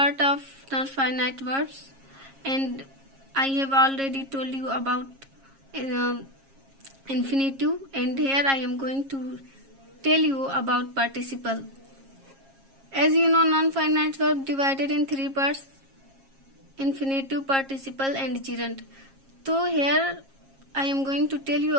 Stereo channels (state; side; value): late; left; 7.4 ms